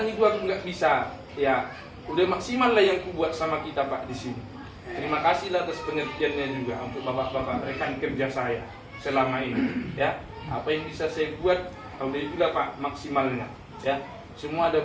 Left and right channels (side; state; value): both; identical; correlation 1.00